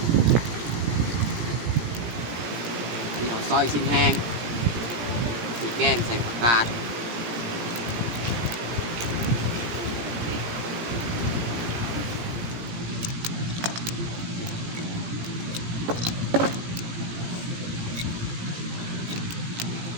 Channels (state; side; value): late; left; 17 ms